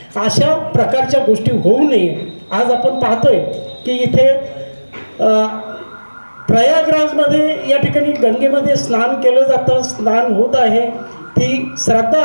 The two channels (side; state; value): both; inverted; correlation -1.00